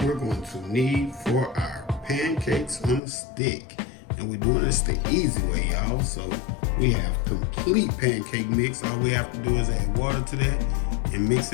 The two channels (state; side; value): drops out; right; at 3.0 s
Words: we're going to need for our pancakes on a stick. And we're doing this the easy way, y'all. So we have complete pancake mix. All we have to do is add water to that and mix